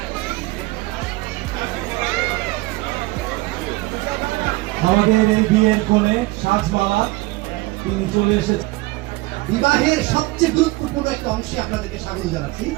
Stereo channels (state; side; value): quieter; left; 21.1 dB